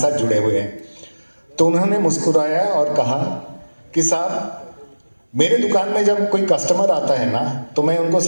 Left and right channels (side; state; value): both; inverted; correlation -1.00